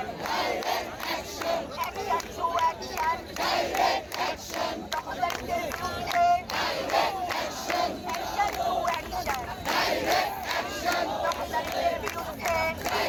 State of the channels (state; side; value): identical; both; correlation 1.00